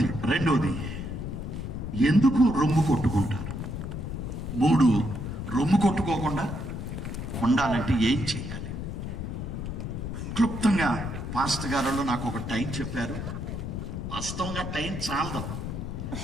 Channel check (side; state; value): left; noise; rumble, 5 dB below the sound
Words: 2, ఎందుకు రొమ్ము కొట్టుకుంటారు? 3, రొమ్ము కొట్టుకోకుండా ఉండాలంటే ఏం చేయాలి? క్లుప్తంగా పాస్టర్ గారు నాకు ఒక టైం చెప్పారు. వాస్తవంగా టైం చాలదు,